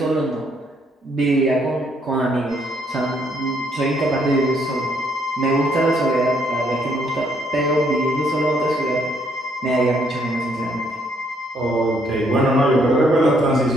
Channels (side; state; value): both; normal; correlation 0.69